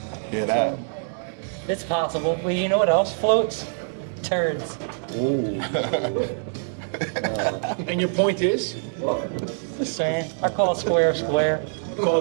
Hear that? It's possible. Well, you know what else floats? Turds. And your point is? Just saying. I call square square.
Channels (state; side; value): silent; left; digital silence